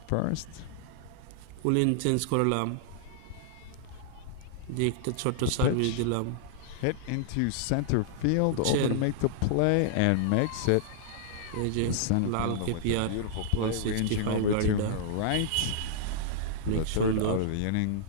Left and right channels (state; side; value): different; both; correlation -0.01